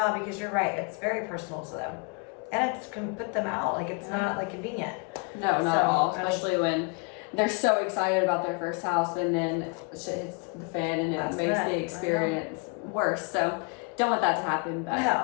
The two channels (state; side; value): quieter; right; 33.7 dB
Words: because you're right, it's very personal to them. And it can put them out, like, it's not like convenient. No, not at all, especially when they're so excited about their first house and then shit hits the fan and it makes the experience worse. So don't want that to happen. But